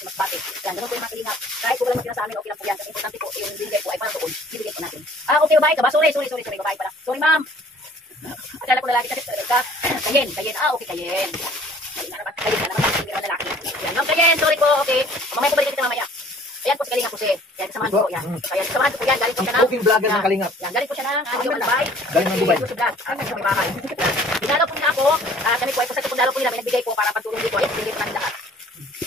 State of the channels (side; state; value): both; normal; correlation 0.53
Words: Masbate. Yan, ganun po yung mga kalingap. Kahit po wala magkina sa amin, okay lang po yan. Kasi importante po, yung bigay po ay para doon. Bibigay po natin. Okay, babae ka ba? Sorry, babae pala. Sorry, ma'am. Akala ko lalaki kasi ka. Kayen. Okay, kayen. Kayen na naman, hindi naman lalaki. Yan, ma'am, kayen, sorry po, okay. Mamaya po balikan kita mamaya. Ayan po si Kalingap po siya. Yan, kasamahan ko po yan. Kaya kasamahan ko po yan, galing po siya ng... Cooking vlogger ng Kalingap. Yan, galing po siya ng Dubai. Galing ng Dubai. Sa may bahay. Dinalaw po niya ako. Kami po ay pasag po dalaw po nila. May nagbigay po para pagtulong dito. Ayan, pinigay po namin lahat.